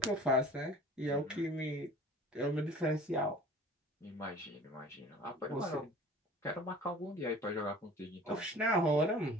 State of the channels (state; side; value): normal; both; correlation 0.45